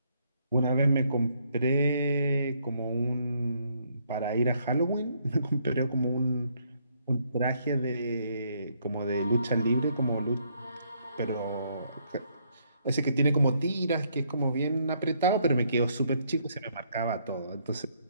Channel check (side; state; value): both; inverted; correlation -0.71